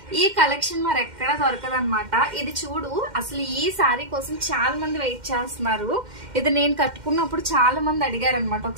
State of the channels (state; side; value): late; left; 2.1 ms